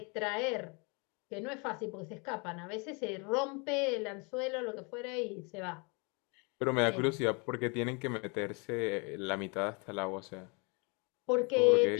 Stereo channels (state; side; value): quieter; right; 32.0 dB